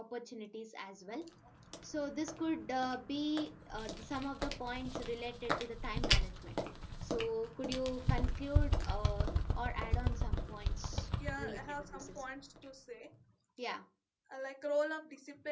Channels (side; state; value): both; identical; correlation 1.00